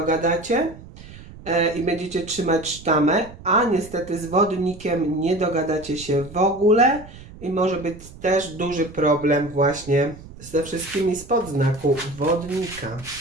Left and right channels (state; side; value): noise; right; rumble, 17 dB below the sound